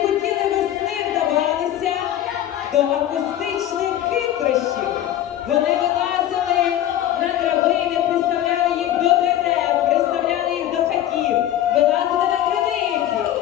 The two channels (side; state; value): right; quieter; 12.2 dB